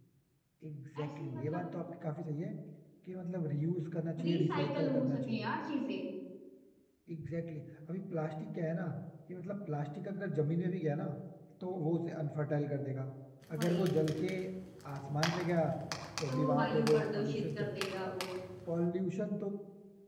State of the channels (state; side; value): identical; both; correlation 1.00